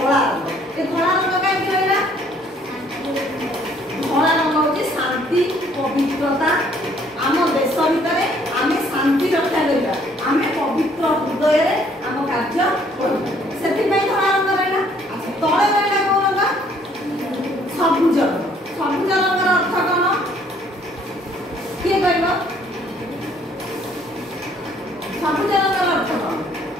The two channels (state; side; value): normal; both; correlation 0.62